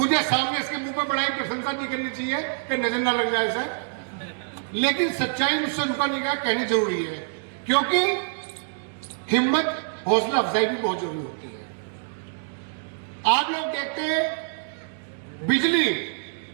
सामने इसके मुंह पर बड़ाई प्रशंसा नहीं करनी चाहिए कि नजर ना लग जाए इसे, लेकिन सच्चाई मुझसे रुका नहीं गया, कहनी जरूरी है। क्योंकि हिम्मत, हौसला अफजाई भी बहुत जरूरी होती है। आप लोग देखते हैं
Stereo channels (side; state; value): left; silent; digital silence